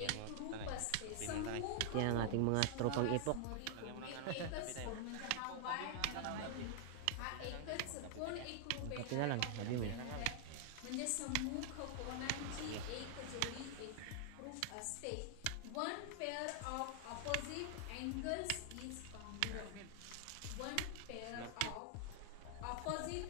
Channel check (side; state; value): both; different; correlation 0.00